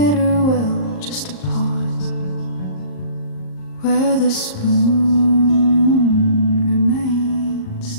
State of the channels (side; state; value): right; late; 38 ms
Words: will, just a pause where the spoon remains